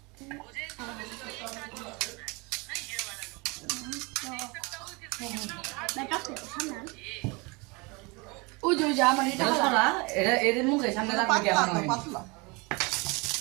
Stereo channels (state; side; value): quieter; left; 27.9 dB